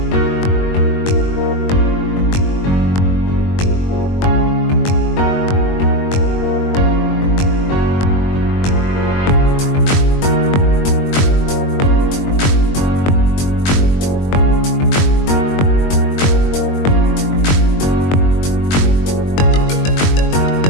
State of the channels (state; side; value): late; right; 21 ms